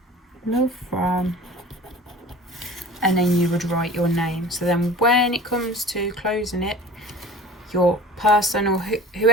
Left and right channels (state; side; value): normal; both; correlation 0.40